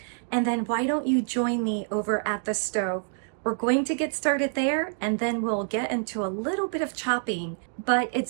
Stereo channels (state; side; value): silent; left; digital silence